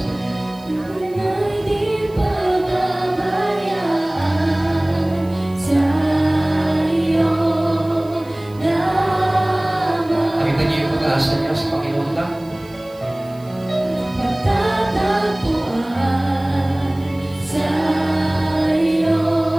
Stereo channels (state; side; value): noise; right; hiss, 27 dB below the sound